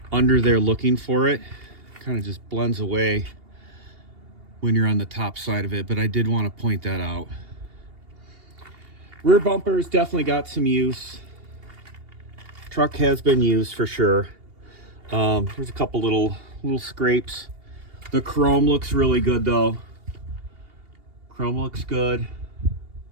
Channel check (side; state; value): left; late; 2.8 ms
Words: under there looking for it. Kind of just blends away when you're on the top side of it, but I did want to point that out. Rear bumpers definitely got some use. Truck has been used for sure. There's a couple little scrapes. The chrome looks really good though. Chrome looks good.